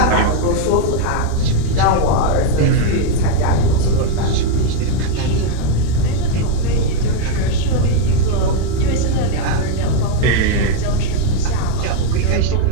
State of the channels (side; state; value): both; different; correlation 0.01